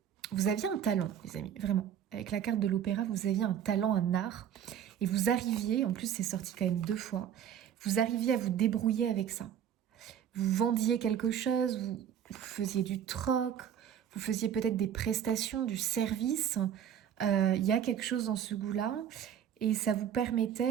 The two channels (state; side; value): quieter; left; 9.3 dB